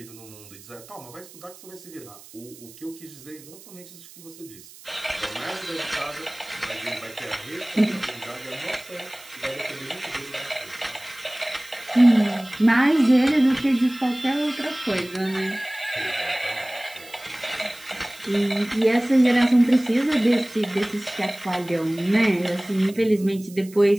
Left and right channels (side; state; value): right; noise; hiss, 20 dB below the sound